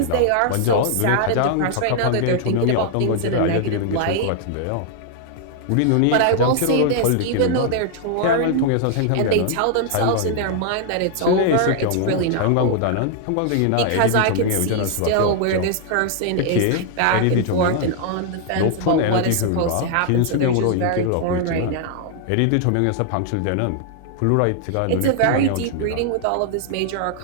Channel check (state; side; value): different; both; correlation 0.00